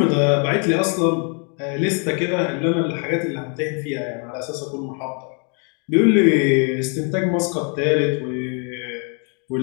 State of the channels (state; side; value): quieter; right; 38.3 dB